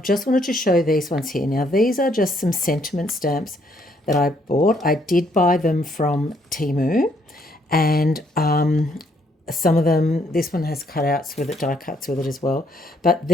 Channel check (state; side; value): normal; both; correlation 0.69